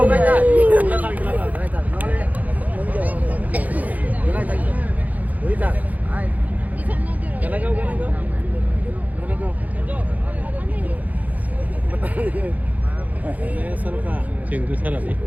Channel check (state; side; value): late; left; 0.078 ms